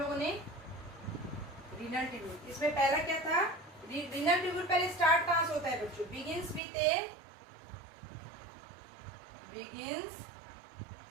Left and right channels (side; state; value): left; drops out; at 6.6 s